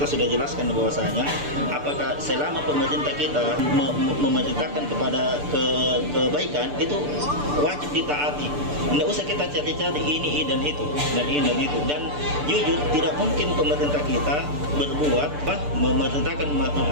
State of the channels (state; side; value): late; left; 6.8 ms